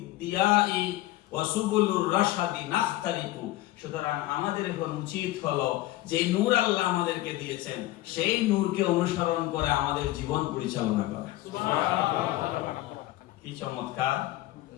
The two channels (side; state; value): right; quieter; 16.7 dB